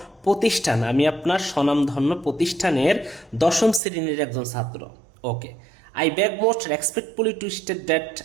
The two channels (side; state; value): left; drops out; at 3.8 s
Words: প্রতিষ্ঠান, আমি আপনার স্বনামধন্য প্রতিষ্ঠানের 10ম শ্রেণীর একজন ছাত্র। Okay, I beg most respectfully to state that